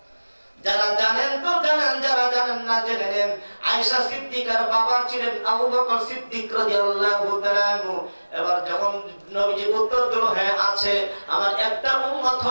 যারা জানেন তো জানেন, যারা জানেন না জেনে নেন, আয়েশা সিদ্দিকার বাবা ছিলেন আবু বকর সিদ্দিক রাদিয়াল্লাহু তাআলা। এবার যখন নবীজি উত্তর দিল, হ্যাঁ আছে, আমার একটা উম্মত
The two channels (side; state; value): both; inverted; correlation -1.00